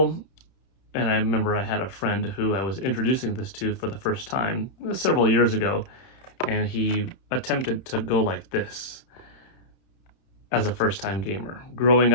and I remember I had a friend who I was introducing this to for the first time several years ago, and he attempted to go like this as a first-time gamer, growing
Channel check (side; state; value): right; late; 31 ms